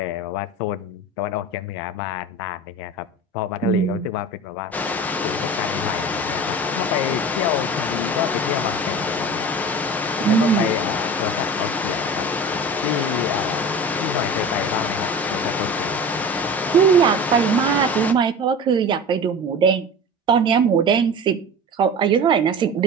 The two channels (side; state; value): both; normal; correlation 0.34